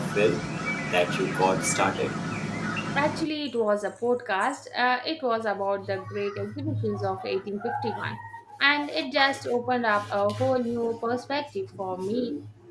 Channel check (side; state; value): both; identical; correlation 1.00